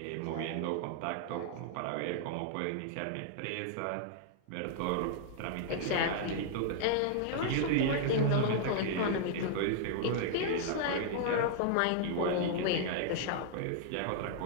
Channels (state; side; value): different; both; correlation -0.01